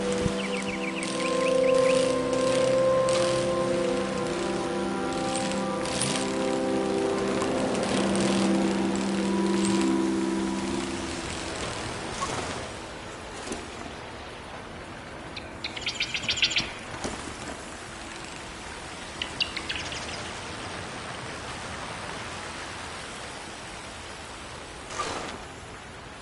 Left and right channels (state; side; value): identical; both; correlation 1.00